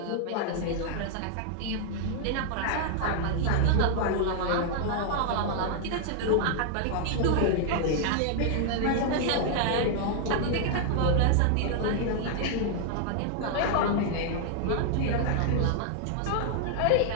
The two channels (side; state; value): both; different; correlation 0.00